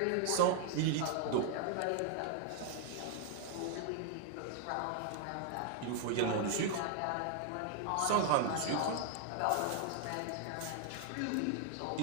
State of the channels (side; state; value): both; different; correlation 0.00